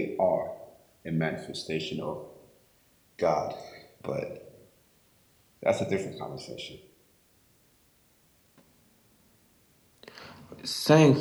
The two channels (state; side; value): identical; both; correlation 1.00